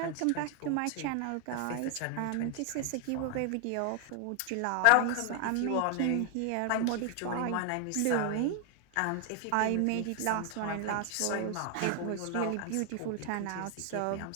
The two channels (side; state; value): both; different; correlation 0.00